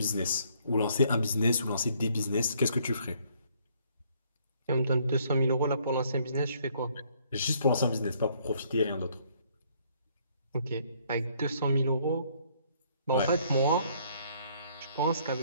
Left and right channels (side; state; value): both; inverted; correlation -0.65